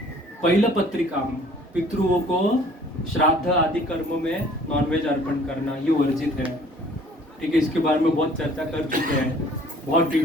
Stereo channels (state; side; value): normal; both; correlation 0.54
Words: पहिलं पत्रिका, पितृओं को श्राद्ध आदि कर्म में नॉनवेज अर्पण करना, ये वर्जित है। ठीक है, इसके बारे में बहुत चर्चा कर चुके हैं, बहुत